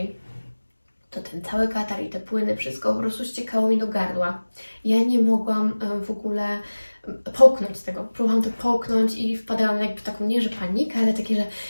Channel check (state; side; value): inverted; both; correlation -1.00